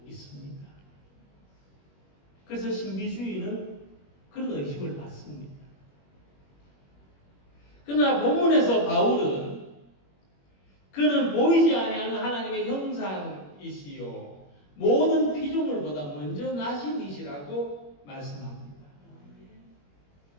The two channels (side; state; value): right; late; 21 ms